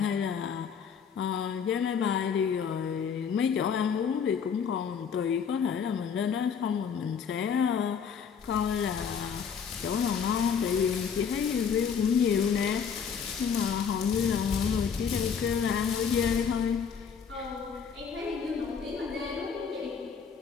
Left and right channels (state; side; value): quieter; right; 6.8 dB